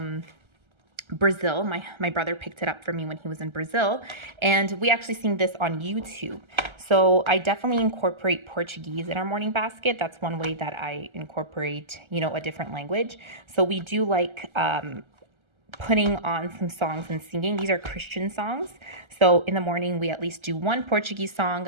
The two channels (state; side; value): late; left; 1.3 ms